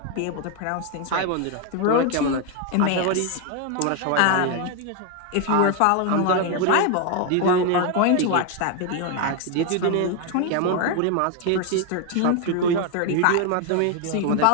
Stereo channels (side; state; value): both; different; correlation 0.01